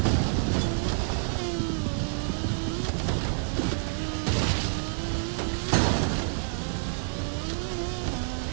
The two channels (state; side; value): silent; left; digital silence